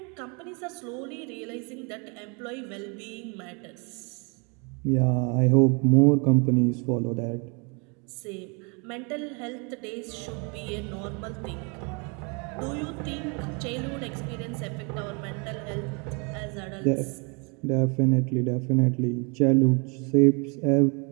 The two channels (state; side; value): quieter; left; 33.1 dB